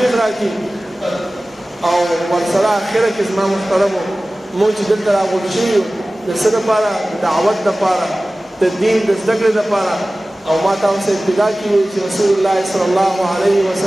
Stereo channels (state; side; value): normal; both; correlation 0.97